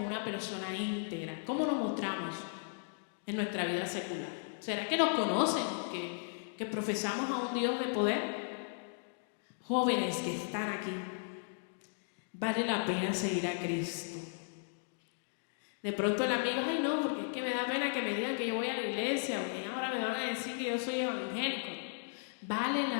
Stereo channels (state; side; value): silent; right; digital silence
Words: una persona íntegra. ¿Cómo nos mostramos en nuestra vida secular? ¿Será que nos conocen, que profesamos a un Dios de poder? Jóvenes que están aquí, vale la pena seguir a Cristo. De pronto el amigo, ay no, porque es que me da pena que me digan que yo voy a la iglesia o que ahora me van a decir que yo soy evangélico. Vale